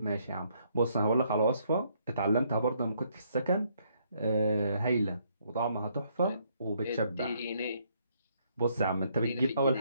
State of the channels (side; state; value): both; inverted; correlation -0.70